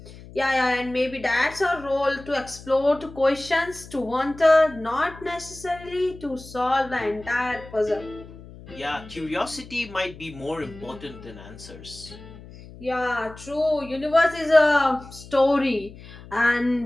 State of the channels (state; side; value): noise; left; hum, 18 dB below the sound